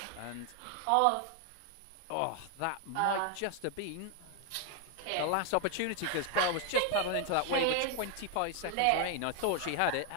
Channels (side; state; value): both; different; correlation 0.01